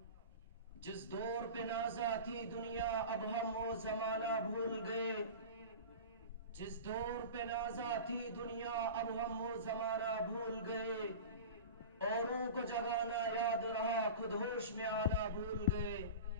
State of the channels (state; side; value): inverted; both; correlation -0.32